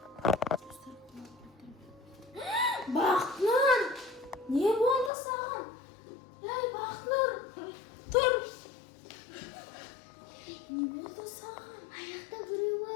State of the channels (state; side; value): drops out; right; at 5.1 s